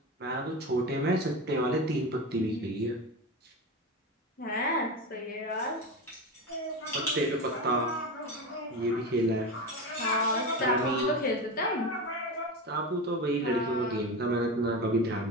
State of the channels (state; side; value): normal; both; correlation 0.22